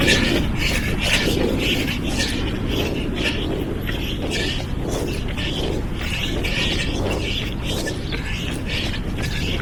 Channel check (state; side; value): identical; both; correlation 1.00